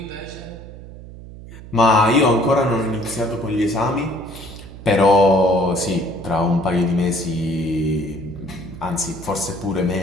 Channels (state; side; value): noise; right; hum, 15 dB below the sound